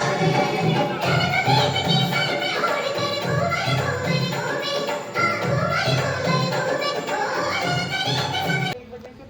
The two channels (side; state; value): both; identical; correlation 1.00